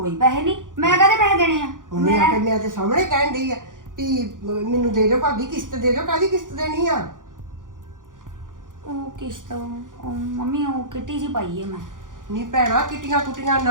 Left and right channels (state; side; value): late; left; 0.88 ms